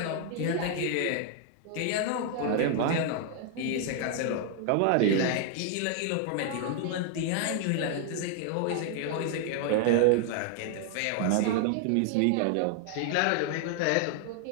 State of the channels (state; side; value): different; both; correlation 0.00